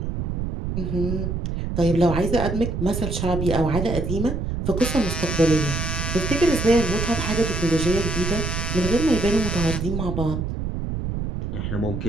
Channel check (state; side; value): noise; right; rumble, 3 dB below the sound